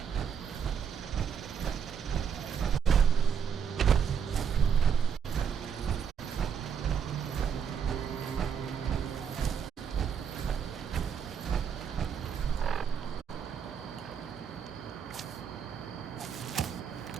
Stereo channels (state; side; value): quieter; left; 7.3 dB